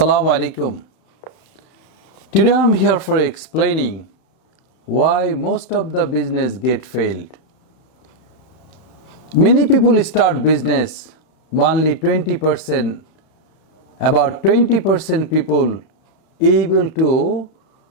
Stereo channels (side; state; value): right; late; 31 ms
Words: alaikum. Today I am here for explaining why most of the business get failed. Many people start business, only 20%, about 20% people able to